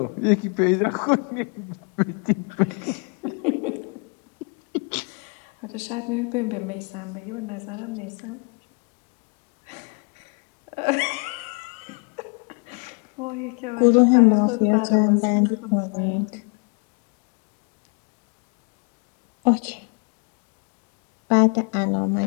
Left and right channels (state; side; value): quieter; right; 34.9 dB